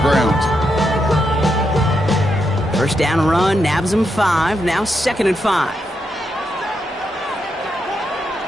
First down run, nabs him 5. Now 2nd and 5.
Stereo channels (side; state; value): both; normal; correlation 0.82